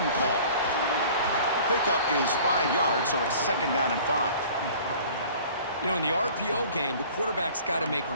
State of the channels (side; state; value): both; inverted; correlation -0.47